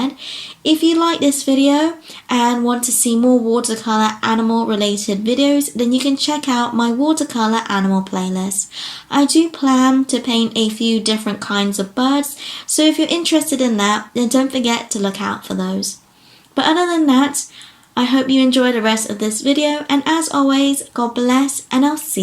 If you like this video and want to see more watercolor animal related videos, then you can check out my watercolor animal playlist. I do plan to paint a few different kinds of birds, so if you're interested in that, then don't forget to look out for those. But other than that, I hope you enjoy the rest of this video, and as always, God bless, and I'll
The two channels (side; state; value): both; identical; correlation 1.00